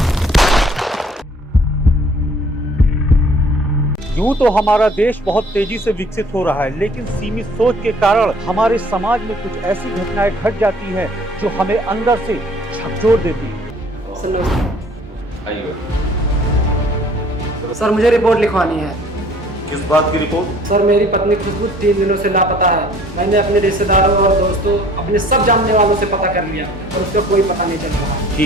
यूं तो हमारा देश बहुत तेजी से विकसित हो रहा है, लेकिन सीमित सोच के कारण हमारे समाज में कुछ ऐसी घटनाएं घट जाती हैं जो हमें अंदर से झकझोर देती है। सर मुझे रिपोर्ट लिखवानी है। किस बात की रिपोर्ट? सर मेरी पत्नी खुशबू 3 दिनों से लापता है। मैंने अपने रिश्तेदारों और दोस्तों, अपने सब जानने वालों से पता कर लिया और उसका कोई पता नहीं चल रहा।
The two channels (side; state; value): both; normal; correlation 0.55